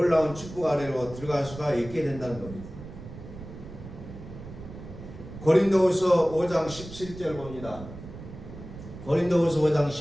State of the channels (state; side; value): noise; right; rumble, 13 dB below the sound